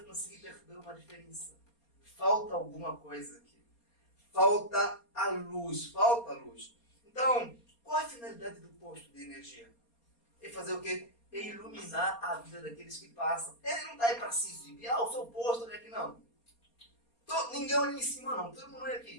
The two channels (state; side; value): late; right; 4.3 ms